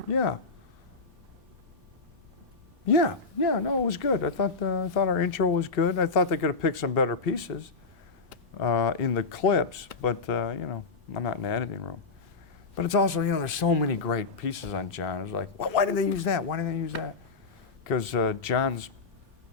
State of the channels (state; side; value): quieter; right; 4.2 dB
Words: Yeah. Yeah, no, it was good. I thought our intro was good. I thought they could have picked some better pieces in the clips, but you know, I'm not in the editing room. But it's also, you know, there's so many great pieces on John. It's like, well, why did they use that? Why did they use that? Because John's